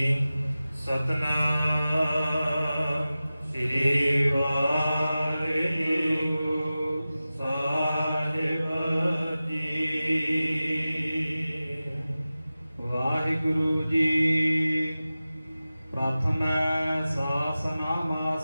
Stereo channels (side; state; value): both; inverted; correlation -0.95